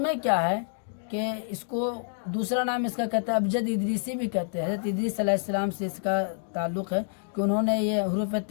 کیا ہے کہ اس کو دوسرا نام اس کا کہتے ہیں ابجد ادریسی بھی کہتے ہیں. حضرت ادریس علیہ السلام سے اس کا تعلق ہے کہ انہوں نے یہ حروف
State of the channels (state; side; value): silent; right; digital silence